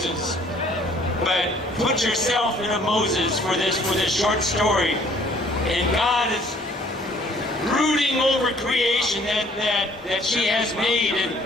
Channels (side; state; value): both; normal; correlation 0.58